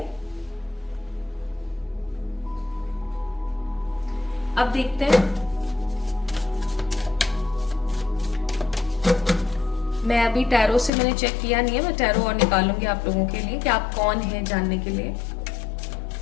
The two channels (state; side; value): drops out; right; at 10.9 s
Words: अब देखते हैं, मैं अभी टैरो से मैंने चेक किया नहीं है, मैं टैरो और निकालूंगी आप लोगों के लिए कि आप कौन हैं जानने के लिए।